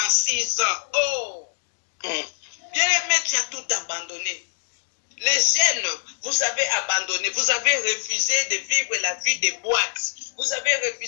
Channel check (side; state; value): right; silent; digital silence